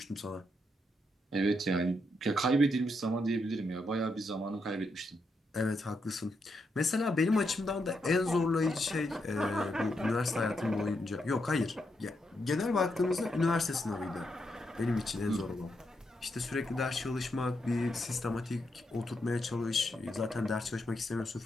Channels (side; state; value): both; normal; correlation 0.81